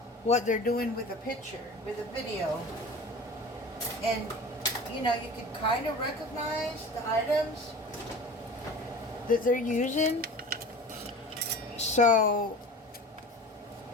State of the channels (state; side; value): normal; both; correlation 0.37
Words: what they're doing with a picture, with a video. And, you know, you can kind of recognize the items that they're using. So,